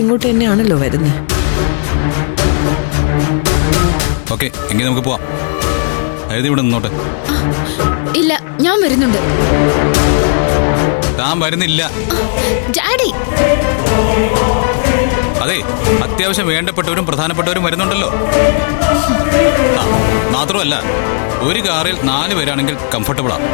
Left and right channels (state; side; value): silent; right; digital silence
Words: ഇങ്ങോട്ട് തന്നെയാണല്ലോ വരുന്നത്. ഓക്കെ, എങ്കിൽ നമുക്ക് പോവാം. അതായത് ഇവിടെ നിന്നോട്ടെ. ഇല്ല, ഞാൻ വരുന്നുണ്ട്. താൻ വരുന്നില്ല. ഡാഡി, അതെ, അത്യാവശ്യം വേണ്ടപ്പെട്ടവരും പ്രധാനപ്പെട്ടവരും വരുന്നുണ്ടല്ലോ. മാത്രമല്ല, ഒരു കാറിൽ 4 പേരാണെങ്കിൽ കംഫർട്ടബിളാ.